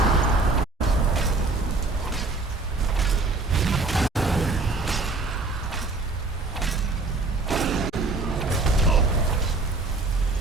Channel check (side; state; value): left; quieter; 3.4 dB